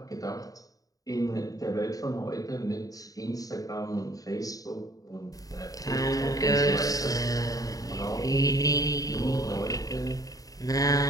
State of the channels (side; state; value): right; late; 0.17 ms